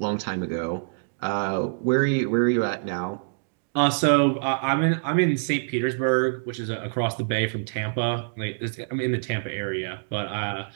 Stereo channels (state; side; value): silent; left; digital silence